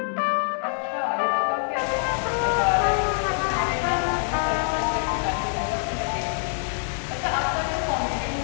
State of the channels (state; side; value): silent; right; 62 dB below the other